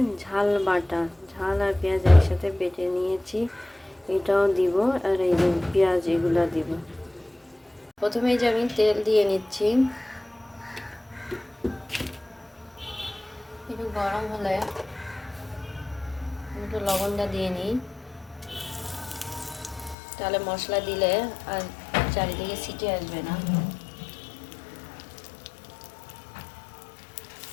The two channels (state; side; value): drops out; right; at 20.0 s